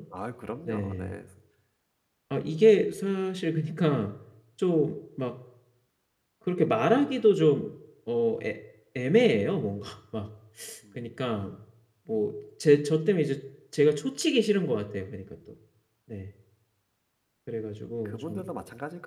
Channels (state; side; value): identical; both; correlation 1.00